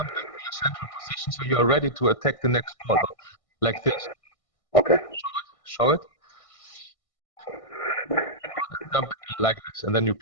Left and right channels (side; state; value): right; late; 1.6 ms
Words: back to your central position so you are ready to attack the next ball, like this. Okay. Show it. Jump like this, and then you